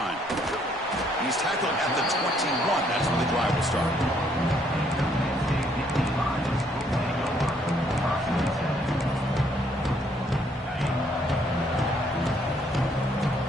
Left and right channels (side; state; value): both; normal; correlation 0.68